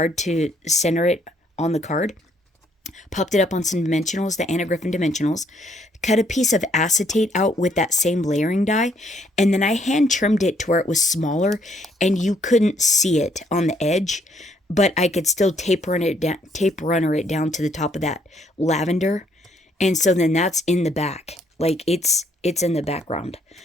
to center it on the card. Popped it up on some dimensionals, the Anna Griffin dimensionals. Cut a piece of acetate out with that same layering die. And then I hand trimmed it to where it was smaller and you couldn't see it on the edge. But I could still tape runner it down to the top of that lavender. And so then that's in the back. Like it's in the background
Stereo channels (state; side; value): normal; both; correlation 0.68